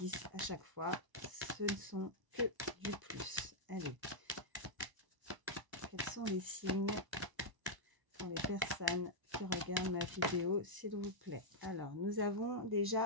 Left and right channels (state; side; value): late; left; 1.0 ms